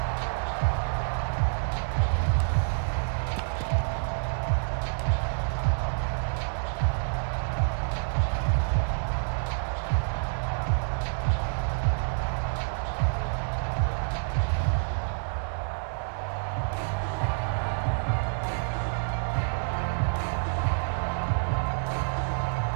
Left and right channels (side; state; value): left; silent; digital silence